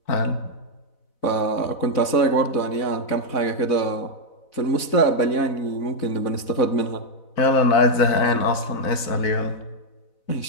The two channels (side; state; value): right; late; 4.0 ms